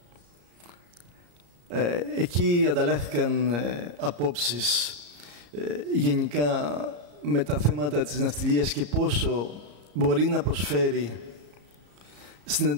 Εκεί ανταλλάχθηκαν απόψεις γενικά με τα θέματα της ναυτιλίας και πόσο μπορεί να προσφέρει στην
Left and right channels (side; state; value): left; late; 34 ms